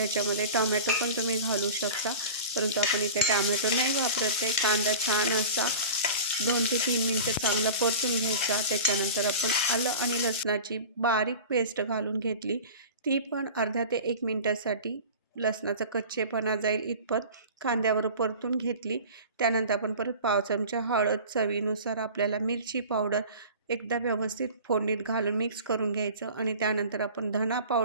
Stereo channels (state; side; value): inverted; both; correlation -0.37